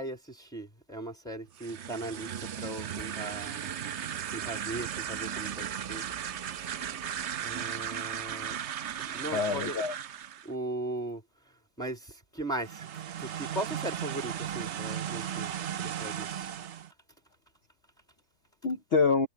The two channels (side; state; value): right; late; 3.3 ms